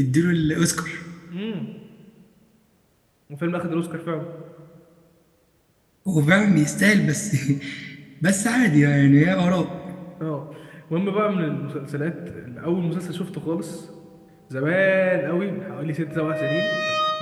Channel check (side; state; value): both; identical; correlation 1.00